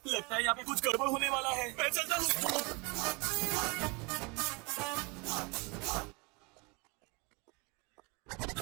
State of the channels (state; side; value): quieter; left; 29.3 dB